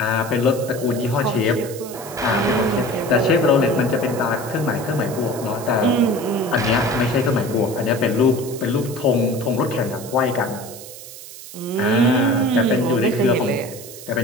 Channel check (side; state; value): right; noise; hiss, 15 dB below the sound